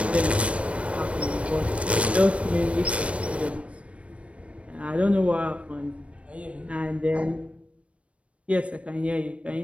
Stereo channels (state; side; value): late; left; 0.062 ms